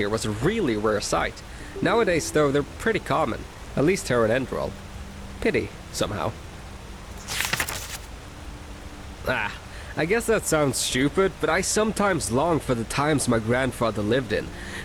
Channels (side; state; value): both; identical; correlation 1.00